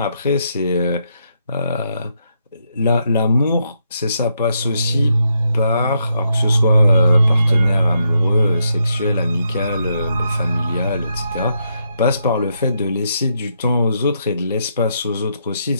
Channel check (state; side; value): inverted; both; correlation -0.79